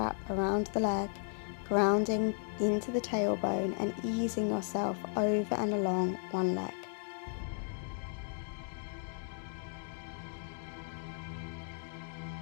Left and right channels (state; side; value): silent; right; 54 dB below the other